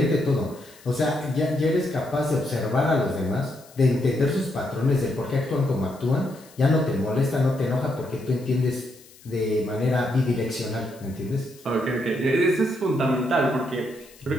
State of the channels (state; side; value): noise; left; hiss, 24 dB below the sound